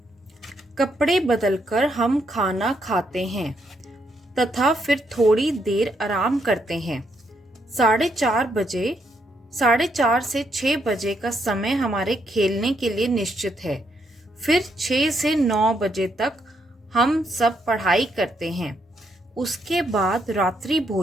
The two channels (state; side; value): normal; both; correlation 0.76